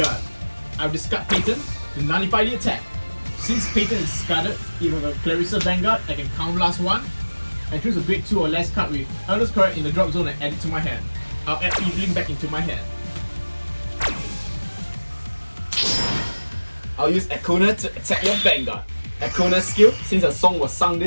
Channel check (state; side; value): inverted; both; correlation -1.00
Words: I'll discard Peyton to nullify the attack. Since Peyton is discarded, if I have a Clarissa Vanguard, I can Counter Blast 1 and choose a grade 2 or less card with Earnest Correct in the drop zone and add it to my hand. I'll add Evelyn back into my hand. I'll use Econa to attack your Vanguard. Econa's skill, since a song was sung